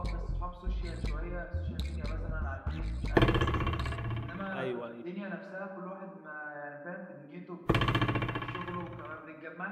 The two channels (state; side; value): identical; both; correlation 1.00